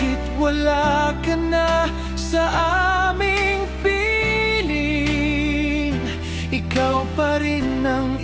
wala ka na sa aming piling, ikaw pa rin ang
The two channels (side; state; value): both; identical; correlation 1.00